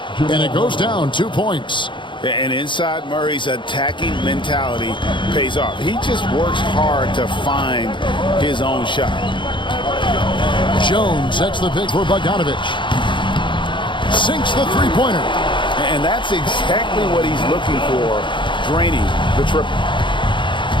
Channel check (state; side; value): late; right; 0.23 ms